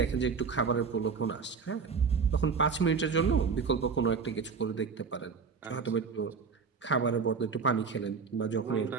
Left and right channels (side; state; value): left; quieter; 5.5 dB